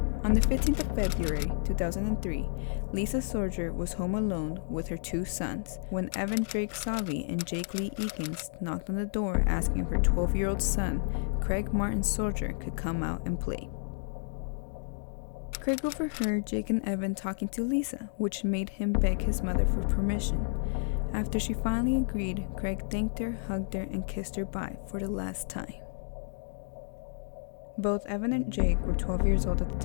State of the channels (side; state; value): right; silent; digital silence